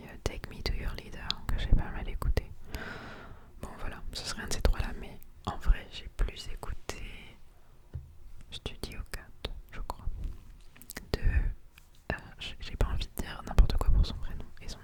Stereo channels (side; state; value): both; identical; correlation 1.00